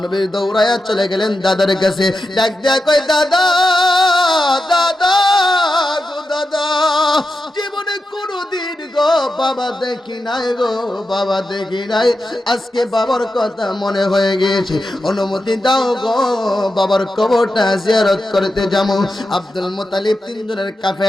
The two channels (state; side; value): normal; both; correlation 0.89